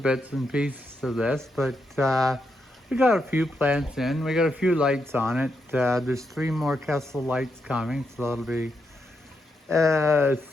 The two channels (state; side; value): normal; both; correlation 0.82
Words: and pieces of this, but we got a few plants in. We got a few lights on it. There's 3 more Kessel lights coming, so that'll be